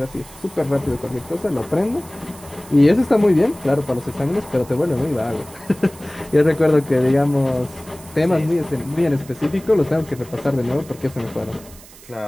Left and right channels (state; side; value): noise; right; hiss, 21 dB below the sound